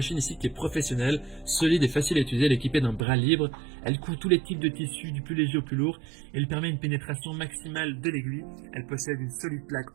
ici qui est professionnelle, solide et facile à utiliser. Elle est équipée d'un bras libre, elle coud tous les types de tissus du plus léger au plus lourd, elle permet une pénétration maximale de l'aiguille, elle possède une solide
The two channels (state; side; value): drops out; left; at 3.1 s